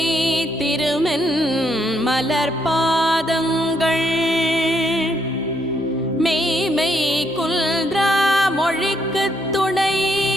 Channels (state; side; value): noise; right; hum, 25 dB below the sound